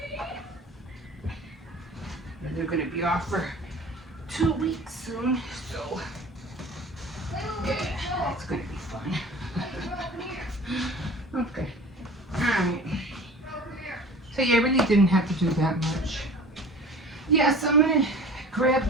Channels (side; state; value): both; normal; correlation 0.42